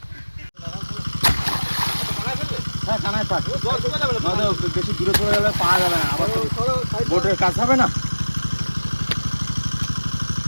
হ্যাঁ, কানায় পাক। জল শুকিয়ে যাবে না তো? বেশি দূরে চলে গেলে পাওয়া যাবে না, আবার তো বোটের কাজ হবে না।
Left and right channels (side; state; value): both; inverted; correlation -1.00